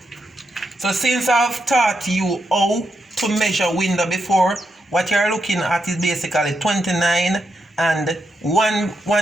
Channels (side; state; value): both; normal; correlation 0.83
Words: So since I've taught you how to measure window before, what you're looking at is basically 29, and